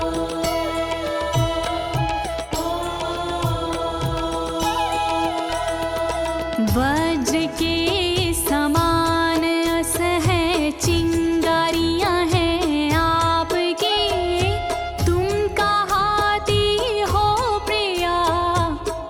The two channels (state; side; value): identical; both; correlation 1.00